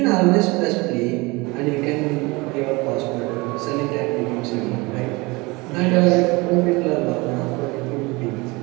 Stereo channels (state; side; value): quieter; left; 24.4 dB